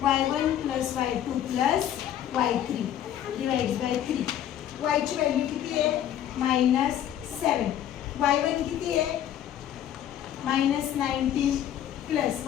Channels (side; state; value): right; quieter; 10.8 dB